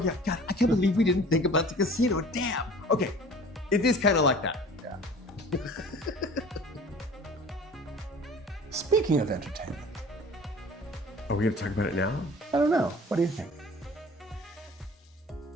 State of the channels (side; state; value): both; normal; correlation 0.45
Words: yeah, God, I can't believe we didn't think about the casino. Damn. Okay, it is kind of like that. Yeah. Speaking of entertainment, Are we gonna talk about it now? I don't know. What do you think?